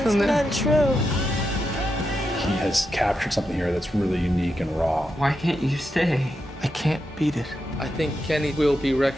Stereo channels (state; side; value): normal; both; correlation 0.86